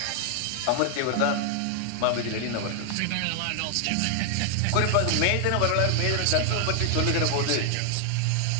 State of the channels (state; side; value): different; both; correlation 0.00